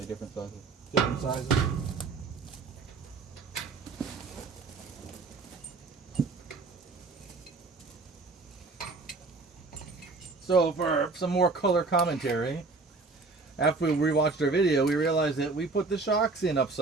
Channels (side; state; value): left; quieter; 3.9 dB